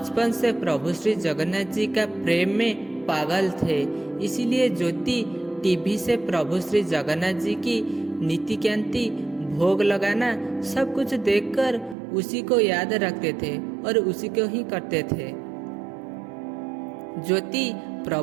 से प्रभु श्री जगन्नाथ जी का प्रेम में पागल थे, इसीलिए ज्योति टीवी से प्रभु श्री जगन्नाथ जी की नीति कांति भोग लगाना सब कुछ देखकर उसी को याद रखते थे और उसी को ही करते थे। ज्योति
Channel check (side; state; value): left; drops out; at 12.0 s